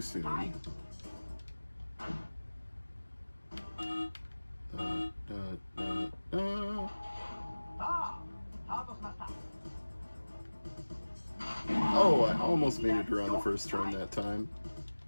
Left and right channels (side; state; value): both; inverted; correlation -1.00